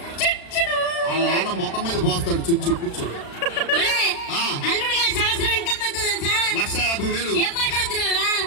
వాళ్ళ నాన్న ముఖం మీద పోస్తాడు. చుచ్చు కూర్చో. ఒరేయ్, ఆ. అల్లుడు గారి సంవత్సరం ఇన్కమ్ ఎంతో తెలుసా? 1,50,000. ఏం మాట్లాడుతున్నారా?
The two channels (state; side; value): late; right; 36 ms